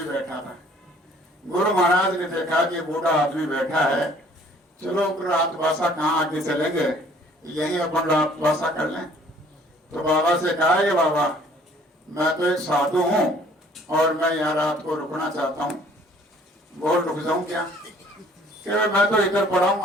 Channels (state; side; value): normal; both; correlation 0.56